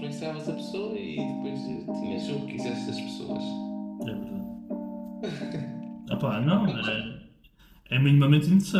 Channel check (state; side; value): identical; both; correlation 1.00